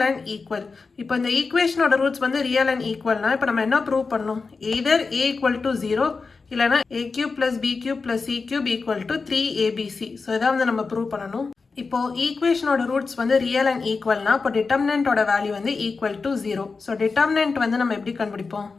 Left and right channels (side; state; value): right; quieter; 4.4 dB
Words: and equal. இப்போ இந்த equationோட roots வந்து real and equalனா, இப்போ நம்ம என்ன prove பண்ணணும்? Either a equal to 0, இல்லைனா a cube plus b cube plus c cube equal to 3abc. So, இதான் வந்து நம்ம prove பண்ணணும். இப்போ equationோட roots வந்து real and equalனா, இப்போ determinantோட value வந்து equal to 0. So, determinant வந்து நம்ம எப்படி கண்டுபிடிப்போம்?